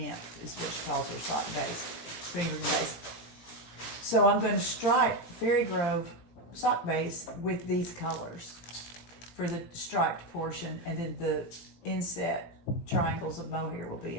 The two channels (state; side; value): late; right; 18 ms